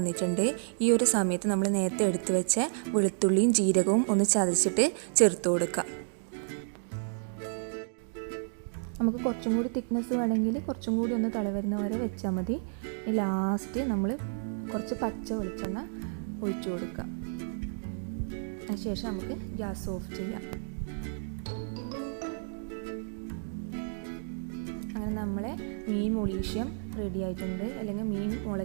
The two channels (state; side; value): silent; left; digital silence